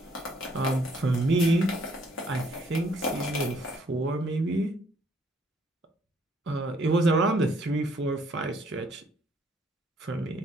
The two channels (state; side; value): normal; both; correlation 0.65